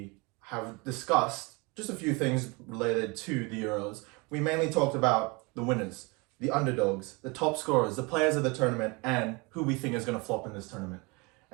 have discussed just a few things related to the Euros. We mainly talked about the winners, the underdogs, the top scorers, the players of the tournament, and who we think is going to flop in this tournament.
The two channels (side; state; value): left; quieter; 27.6 dB